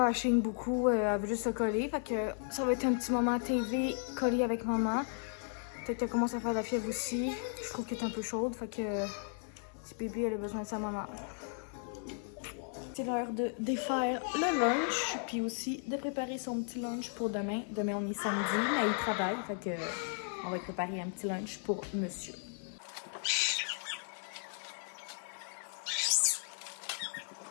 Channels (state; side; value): silent; right; 54 dB below the other